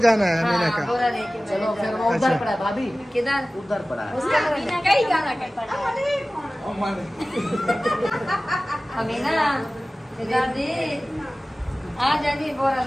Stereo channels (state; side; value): normal; both; correlation 0.97